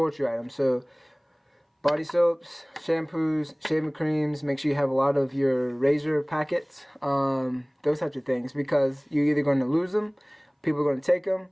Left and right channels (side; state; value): both; identical; correlation 1.00